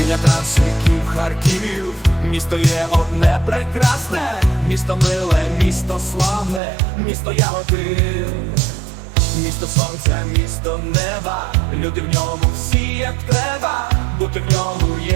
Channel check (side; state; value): left; drops out; at 6.6 s